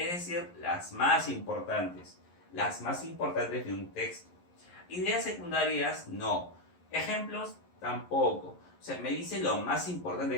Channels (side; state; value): right; late; 11 ms